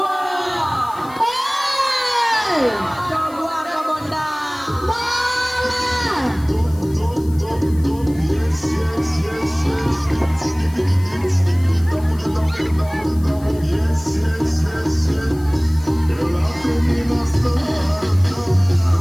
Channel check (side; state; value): left; noise; hiss, 23 dB below the sound